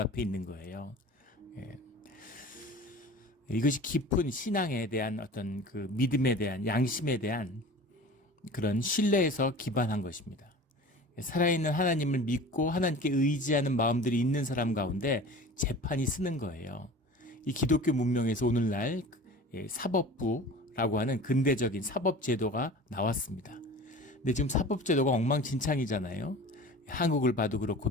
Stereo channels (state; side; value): normal; both; correlation 0.39